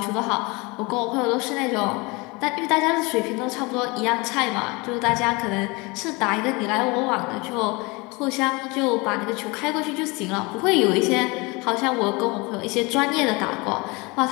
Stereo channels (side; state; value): right; quieter; 26.1 dB